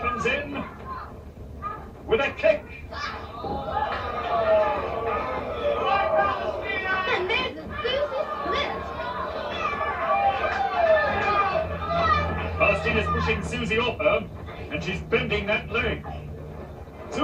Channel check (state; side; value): identical; both; correlation 1.00